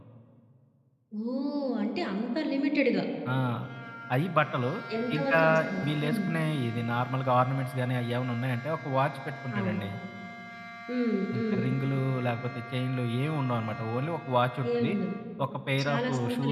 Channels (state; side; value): identical; both; correlation 1.00